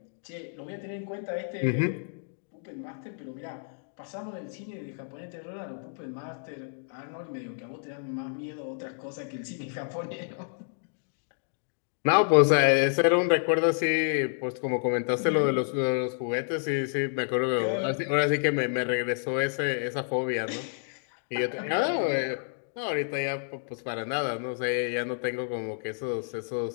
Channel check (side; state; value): right; silent; digital silence